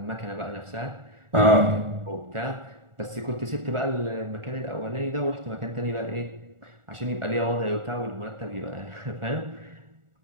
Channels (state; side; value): late; left; 1.4 ms